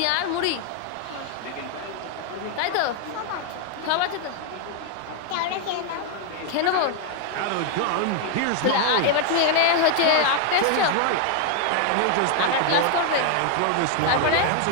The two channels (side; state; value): both; different; correlation 0.00